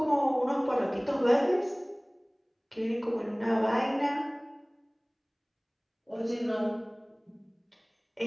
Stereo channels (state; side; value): identical; both; correlation 1.00